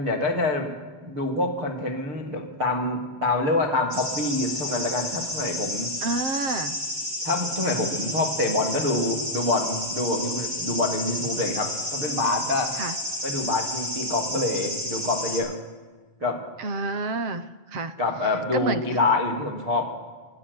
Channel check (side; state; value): left; late; 7.2 ms